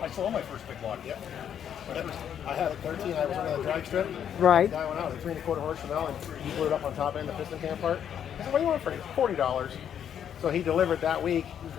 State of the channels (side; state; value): right; quieter; 9.0 dB